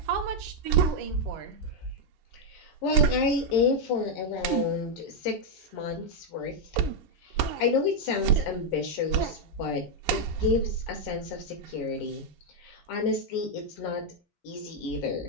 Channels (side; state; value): both; normal; correlation 0.00